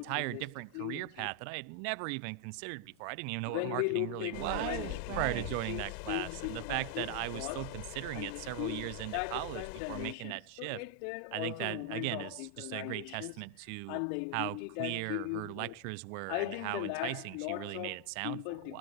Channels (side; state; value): both; different; correlation 0.00